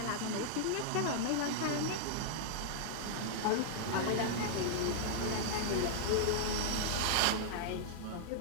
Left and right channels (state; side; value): different; both; correlation -0.01